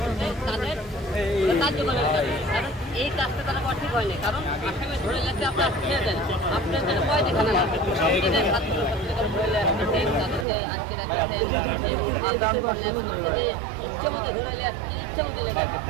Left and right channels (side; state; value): left; drops out; at 10.5 s